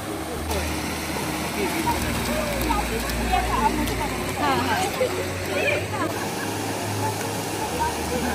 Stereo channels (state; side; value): identical; both; correlation 1.00